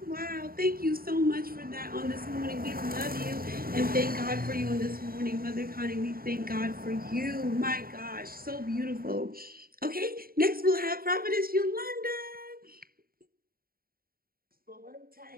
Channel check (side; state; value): left; late; 0.43 ms